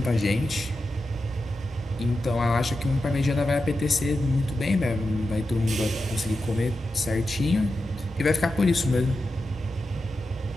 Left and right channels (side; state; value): both; normal; correlation 0.90